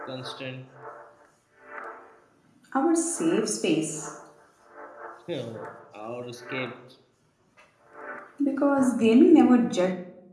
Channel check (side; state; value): both; identical; correlation 1.00